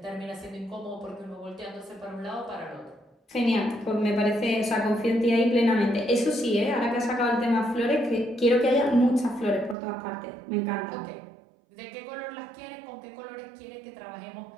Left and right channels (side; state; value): left; drops out; at 9.8 s